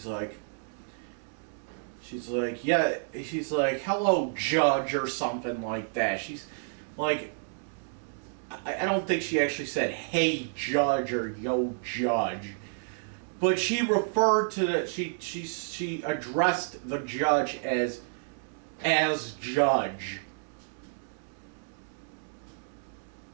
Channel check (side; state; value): left; silent; digital silence